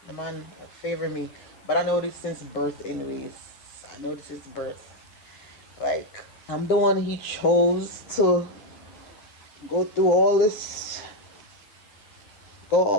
the man favor me. But I know this since birth, anyways. I know this since birth. Like, I'm the one he chose to go through all this,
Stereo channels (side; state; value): right; late; 10 ms